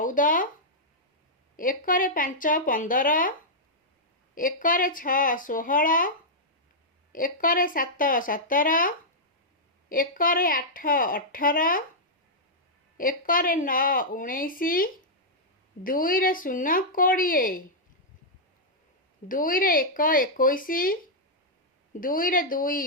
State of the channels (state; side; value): normal; both; correlation -0.08